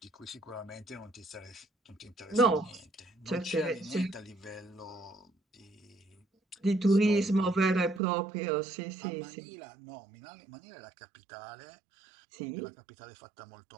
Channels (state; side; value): drops out; left; at 8.0 s